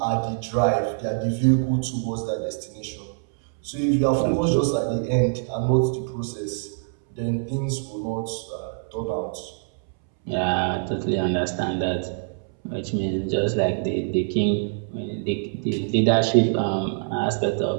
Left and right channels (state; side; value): silent; left; 62 dB below the other